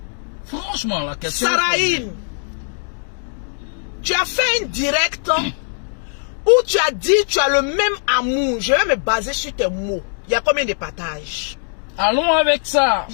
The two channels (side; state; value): right; silent; digital silence